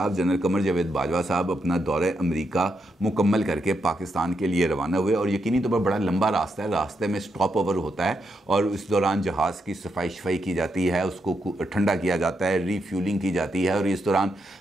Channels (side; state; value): both; normal; correlation 0.82